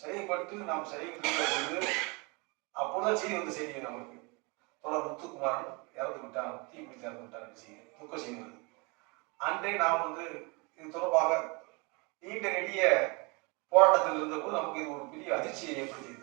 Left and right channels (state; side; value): quieter; left; 29.2 dB